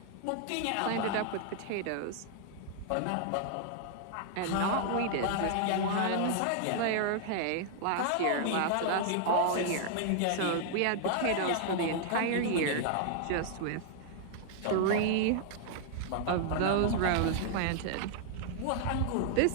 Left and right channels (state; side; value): different; both; correlation -0.01